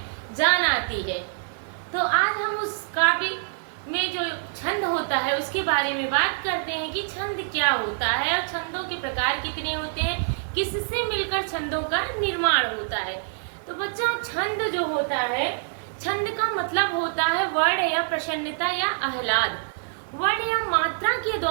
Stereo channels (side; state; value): left; silent; digital silence